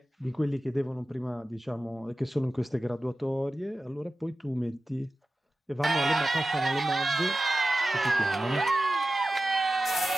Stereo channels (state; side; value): normal; both; correlation 0.95